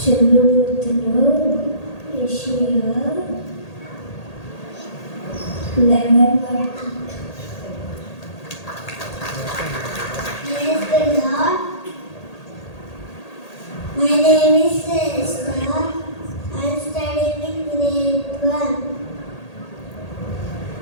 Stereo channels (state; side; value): late; right; 1.8 ms